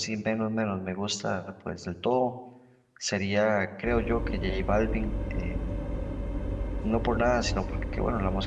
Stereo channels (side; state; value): both; identical; correlation 1.00